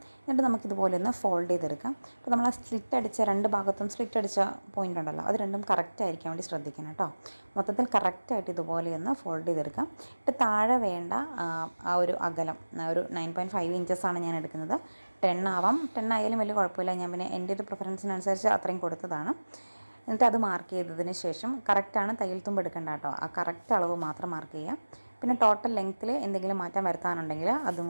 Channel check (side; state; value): both; inverted; correlation -1.00